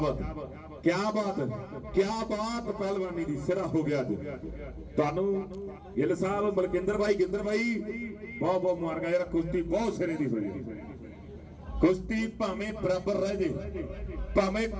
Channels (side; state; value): both; identical; correlation 1.00